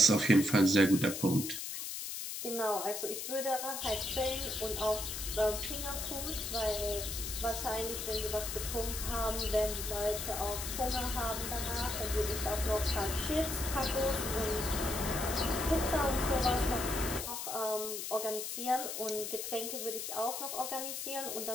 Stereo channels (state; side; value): noise; left; hiss, 5 dB below the sound